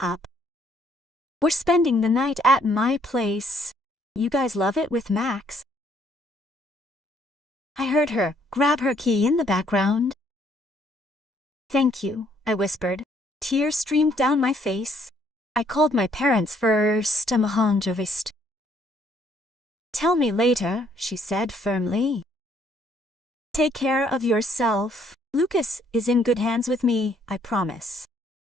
We're spending the night at my place. You guys love it with Max. I heard her grab her key in the background. Thank you, I whispered. Tears streamed down my face. I called my parents first. Tell me later, she said firmly. Take care of yourself. Lucas is in good hands with me, I promise.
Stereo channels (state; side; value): normal; both; correlation 0.66